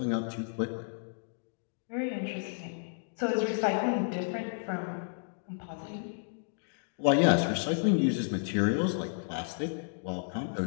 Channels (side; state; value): right; silent; digital silence